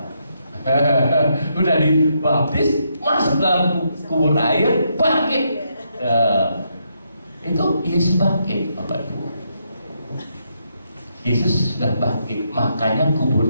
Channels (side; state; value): both; inverted; correlation -0.78